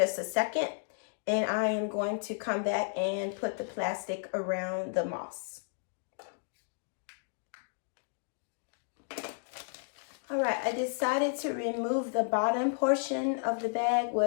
a second, and I am going to come back and put the plastic around the moss. All right, I decided to remove the bottom portion of the bag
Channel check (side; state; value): right; silent; digital silence